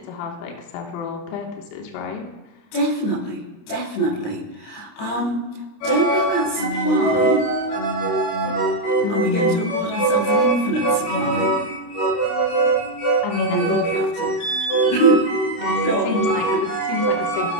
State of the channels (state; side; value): late; right; 29 ms